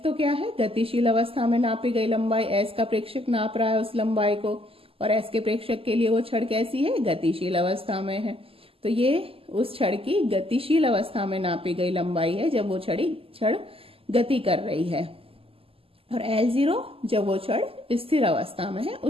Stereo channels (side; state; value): left; late; 0.27 ms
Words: तो क्या है, गतिशील अवस्था में नापी गई लंबाई, S का प्रेक्षक नाप रहा है उस लंबाई को, और S के प्रेक्षक के लिए वो छड़ कैसी है, गतिशील अवस्था में है। तो ये उस छड़ की गतिशील अवस्था में नापी गई लंबाई है जब वो छड़ गति कर रही है, और L0 जब वो छड़ स्थिर अवस्था में है